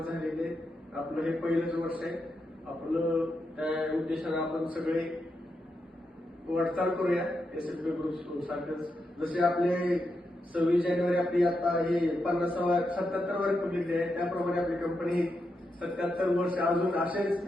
झालेली आहे. आपलं हे पहिलंच वर्ष आहे. आपलं त्या उद्देशाने आपण सगळे वाटचाल करूया एसएलपी ग्रुप सारखंच. जसे आपले 26 जानेवारी आपली आता हे 77वा रिपब्लिक डे आहे, त्याप्रमाणे आपली कंपनी 77 वर्ष अजून असेच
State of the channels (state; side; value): normal; both; correlation 0.85